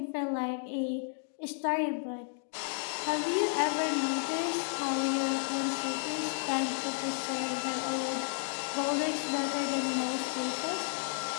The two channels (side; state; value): right; silent; digital silence